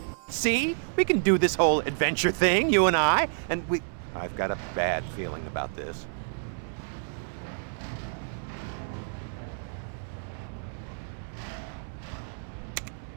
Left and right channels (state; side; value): silent; left; 58 dB below the other